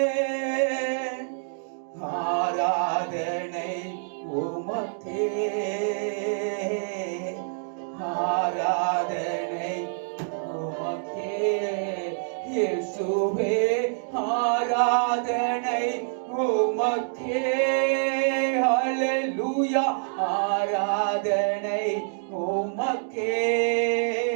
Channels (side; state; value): left; silent; digital silence